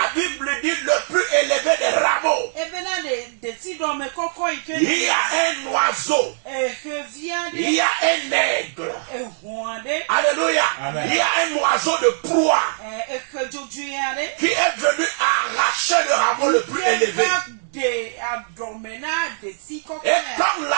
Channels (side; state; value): left; silent; digital silence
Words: Bible dit le plus élevé des rameaux. Il y a un oiseau. Il y a un aigle. Alléluia. Amen. Il y a un oiseau de proie qui est venu arracher le rameau le plus élevé. Et comme